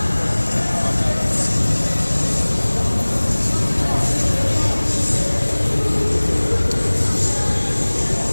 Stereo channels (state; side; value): inverted; both; correlation -1.00